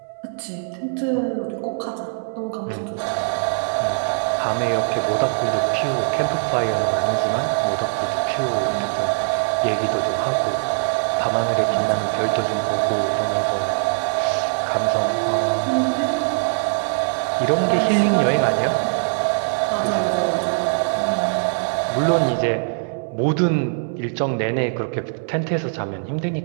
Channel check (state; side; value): silent; left; 64 dB below the other